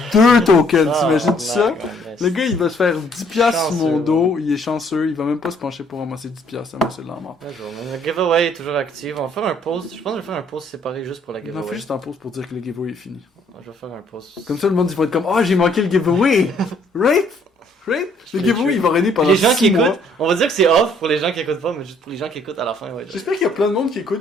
2 tokens. T'imagines ça? Le gars, il va se faire 10$ sur mon Chanceux, dos. Il est chanceux. Il va même pas se pencher pour ramasser 10$. Ça c'est de la mort. Le giveaway est toujours actif. On va faire un post. Je pense que je vais faire un post séparé juste pour la On giveaway. en fait juste un pause pour dire que le giveaway est fini. Je vais faire un post. Comme ça, le monde, il va être comme, oh, j'ai manqué le giveaway! Right? Right? Le giveaway, il va régner pendant Les gens 6 qui mois. écoutent, on va dire que c'est off pour les gens qui écoutent pas, mais juste pour les gens qui écoutent à la fin, ouais. J'espère qu'il y a plein de monde qui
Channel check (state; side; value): normal; both; correlation 0.64